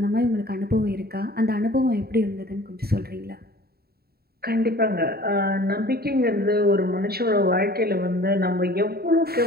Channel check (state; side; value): late; left; 0.45 ms